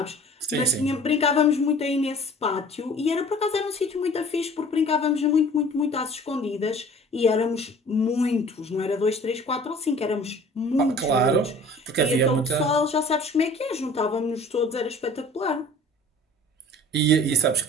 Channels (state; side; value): normal; both; correlation 0.47